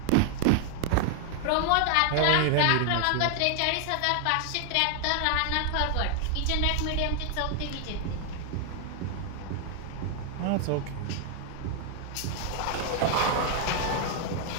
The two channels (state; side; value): different; both; correlation 0.00